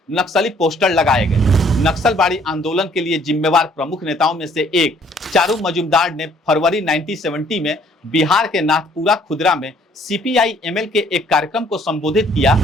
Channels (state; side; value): normal; both; correlation 0.62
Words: नक्सली पोस्टर लगाए गए। नक्सलबाड़ी आंदोलन के लिए जिम्मेवार प्रमुख नेताओं में से एक चारू मजुमदार ने फरवरी 1970 में बिहार के नाथपुरा खुदरा में सीपीआई एमएल के एक कार्यक्रम को संबोधित किया